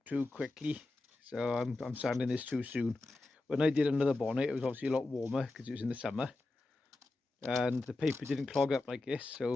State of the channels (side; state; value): right; quieter; 3.1 dB